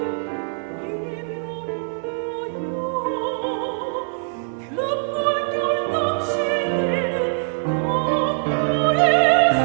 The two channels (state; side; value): silent; left; 58 dB below the other